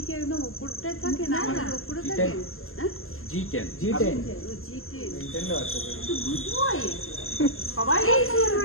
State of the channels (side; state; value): right; late; 0.61 ms